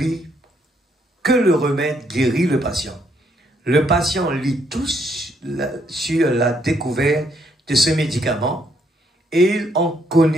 que le remède guérit le patient. Le patient lit tout sur la découverte de ce médicament et il en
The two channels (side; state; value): both; normal; correlation 0.72